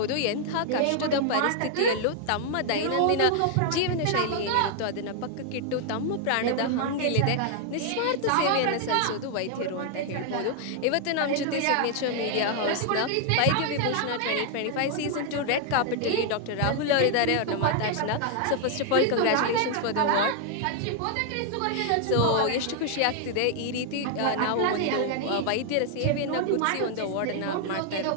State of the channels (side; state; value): both; different; correlation 0.00